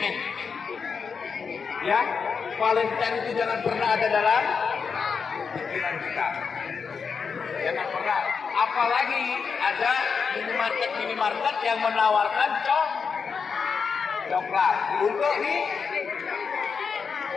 Ya, Valentine itu jangan pernah ada dalam pikiran kita. Jangan pernah. Apalagi ada minimarket yang menawarkan coklat untuk ini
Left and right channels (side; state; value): right; quieter; 5.7 dB